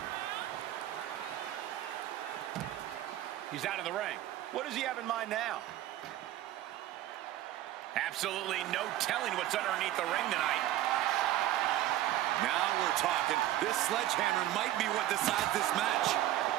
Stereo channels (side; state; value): left; quieter; 13.8 dB